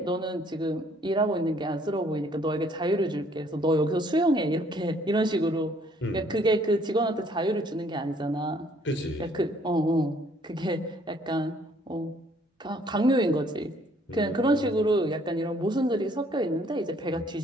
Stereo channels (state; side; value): normal; both; correlation 0.62